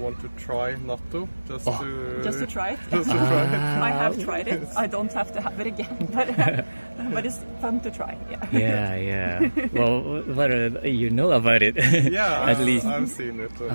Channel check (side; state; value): both; inverted; correlation -1.00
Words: to try natto, just to try it. I have tried it. I don't have to have it again, but it's fun to try. Yeah. Well, what you know about it? At least I've seen it.